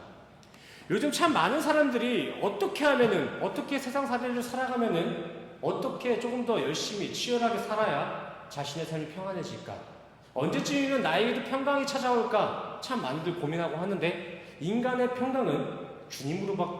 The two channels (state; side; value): identical; both; correlation 1.00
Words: 요즘 참 많은 사람들이 어떻게 세상 사례를 살아가면은 어떻게 조금 더 열심히 치열하게 살아야 자신의 삶이 평안해질까? 언제쯤이면 나에게도 평강이 찾아올까? 참 많이들 고민하고 하는데 인간의 평강은